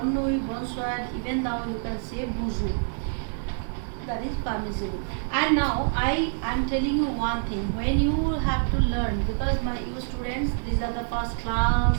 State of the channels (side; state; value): left; silent; digital silence